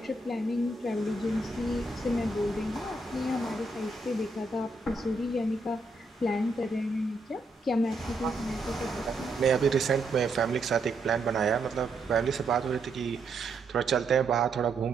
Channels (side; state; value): left; quieter; 3.0 dB